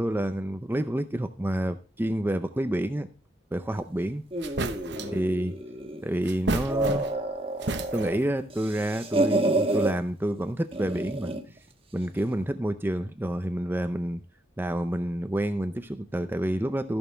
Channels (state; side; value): normal; both; correlation 0.78